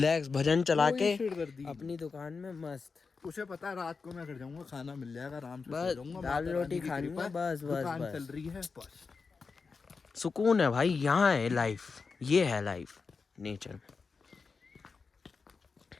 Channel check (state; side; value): quieter; right; 4.8 dB